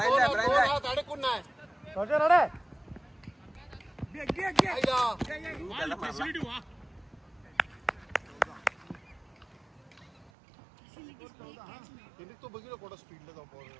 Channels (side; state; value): left; drops out; at 10.3 s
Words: हात अडकून नाही रोजर अरे तो बघितलं कोणा स्पीडला जाऊ